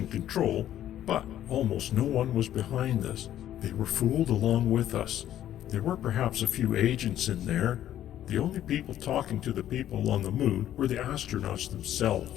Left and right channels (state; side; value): quieter; right; 11.8 dB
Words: Control, but almost no one was behind this. They were fooled along with us. There were perhaps a few agents in there. The only people talking to the people on the moon were the astronauts